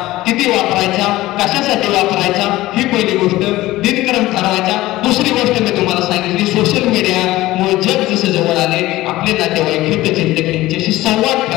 किती वापरायचा, कशासाठी वापरायचा, ही पहिली गोष्ट. दिनक्रम ठरवायचा. दुसरी गोष्ट मी तुम्हाला सांगितली, सोशल मीडियामुळे जग जसं जवळ आले, आपले नातेवाईक, हितचिंतक यांच्याशी संवाद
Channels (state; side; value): quieter; right; 17.2 dB